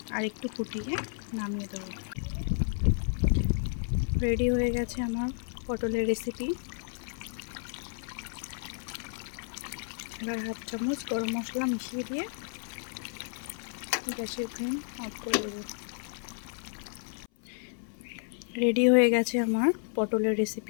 আর একটু ফুটিয়ে নামিয়ে দেবো। রেডি হয়ে গেছে আমার পটলের রেসিপি। এবার 1/2 চামচ গরম মশলা মিশিয়ে দিয়ে গ্যাসের ফ্লেম অফ করে দেবো। রেডি হয়ে গেছে আমার পটলের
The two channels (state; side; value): silent; right; 57 dB below the other